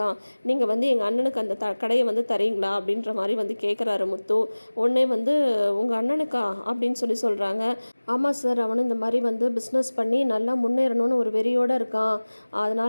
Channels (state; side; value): inverted; both; correlation -1.00